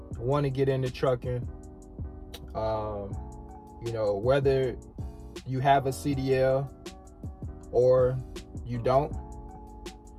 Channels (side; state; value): both; identical; correlation 1.00